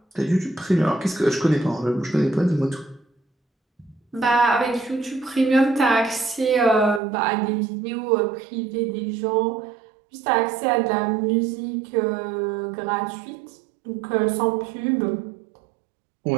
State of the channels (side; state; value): left; drops out; at 7.0 s